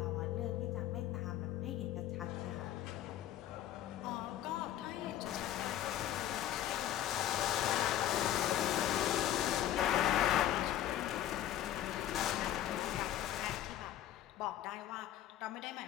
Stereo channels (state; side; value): quieter; right; 12.1 dB